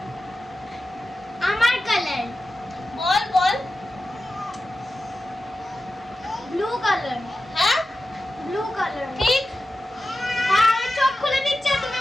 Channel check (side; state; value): both; normal; correlation 0.93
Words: আমার কালার। বল বল। Blue colour. হ্যাঁ ব্লু কালার। ঠিক। হ্যাঁ আমি চোখ খুলে নিচ্ছি, তুমি